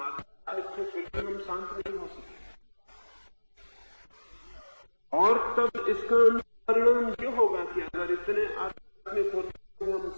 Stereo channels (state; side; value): inverted; both; correlation -1.00